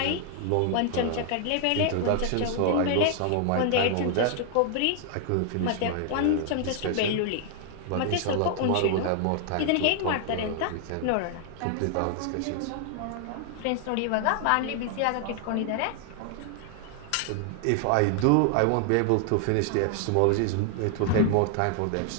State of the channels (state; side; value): different; both; correlation 0.00